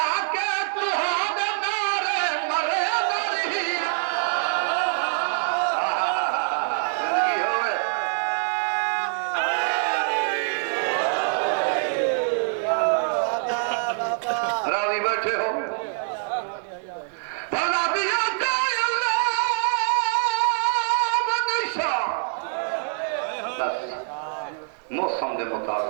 راضی بیٹھے ہو موسم دے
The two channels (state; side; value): silent; left; digital silence